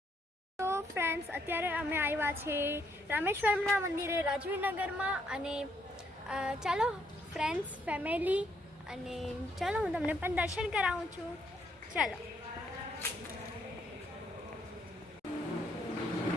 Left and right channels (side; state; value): both; normal; correlation 0.72